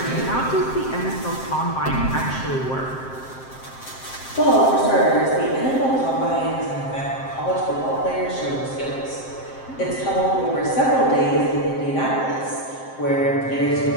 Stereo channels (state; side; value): late; right; 7.6 ms